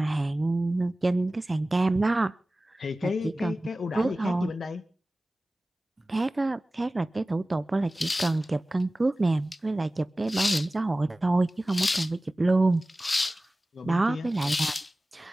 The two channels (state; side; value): normal; both; correlation 0.97